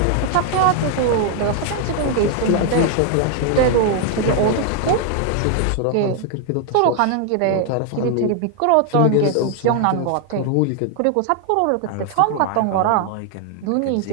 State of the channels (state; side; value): different; both; correlation 0.00